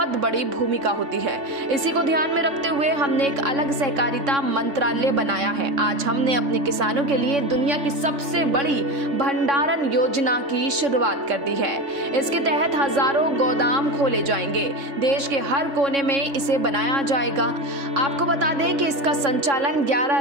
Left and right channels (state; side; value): late; left; 3.6 ms